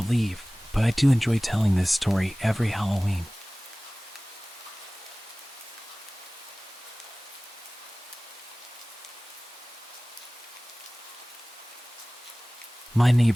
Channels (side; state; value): both; normal; correlation 0.98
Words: but I do enjoy telling this story every Halloween. My